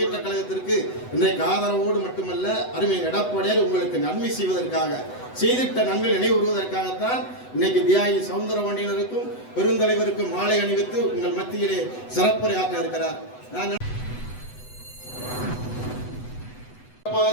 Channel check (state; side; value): late; right; 8.0 ms